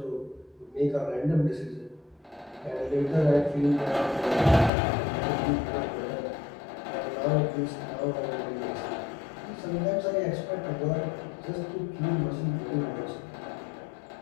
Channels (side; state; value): right; drops out; at 4.7 s